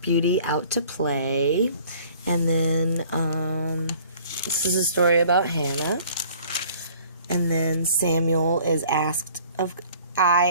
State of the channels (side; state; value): both; inverted; correlation -0.53